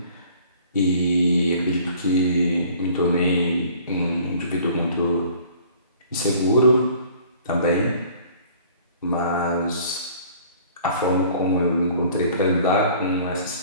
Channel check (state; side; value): inverted; both; correlation -0.52